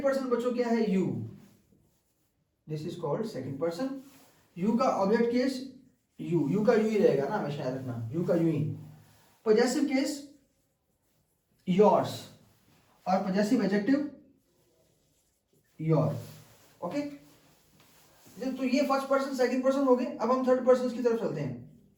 पर्सन बच्चों क्या है, you. This is called second person. You का ऑब्जेक्ट केस यू, यू का यू ही रहेगा ना, हमेशा याद रखना, यू का you he. Possessive case yours, और पॉजेसिव एडजेक्टिव योर। ओके, तो ये फर्स्ट पर्सन सेकंड पर्सन हो गए। अब हम थर्ड पर्सन की तरफ चलते हैं।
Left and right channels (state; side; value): identical; both; correlation 1.00